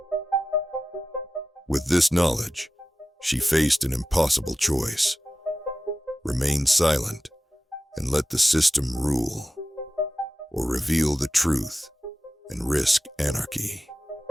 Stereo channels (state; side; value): normal; both; correlation 0.93